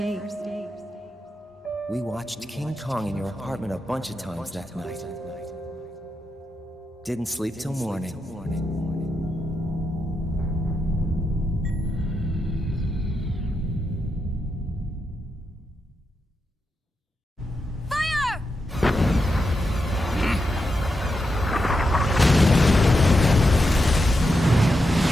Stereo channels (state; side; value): normal; both; correlation 0.86